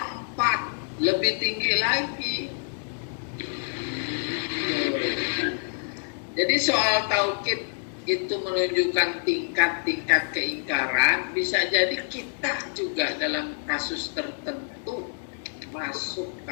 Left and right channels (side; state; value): right; silent; digital silence